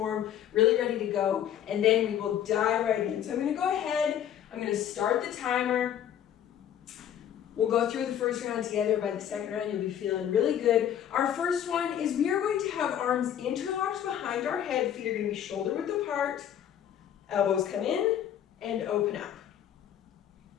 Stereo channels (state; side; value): quieter; right; 10.1 dB